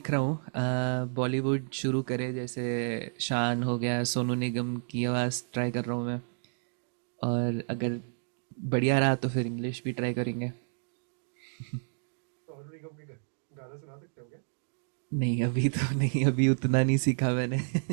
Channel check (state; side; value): silent; left; digital silence